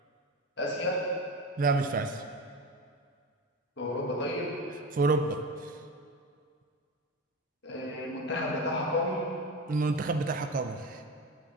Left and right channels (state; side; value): normal; both; correlation 0.25